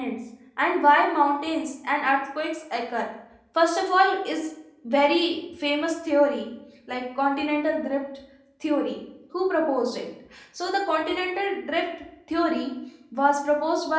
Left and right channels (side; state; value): both; identical; correlation 1.00